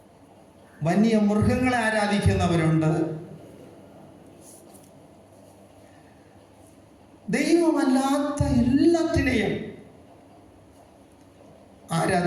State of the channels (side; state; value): both; identical; correlation 1.00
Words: വന്യമൃഗങ്ങളെ ആരാധിക്കുന്നവരുണ്ട്, ദൈവമല്ലാത്ത എല്ലാത്തിനെയും